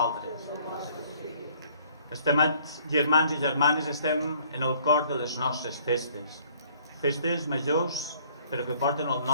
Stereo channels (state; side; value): inverted; both; correlation -0.59